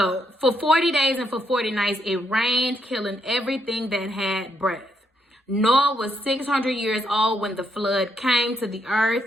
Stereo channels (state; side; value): normal; both; correlation 0.77